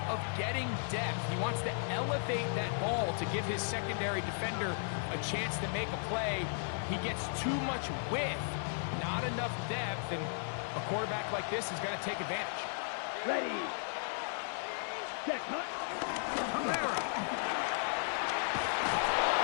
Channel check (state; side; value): silent; right; 54 dB below the other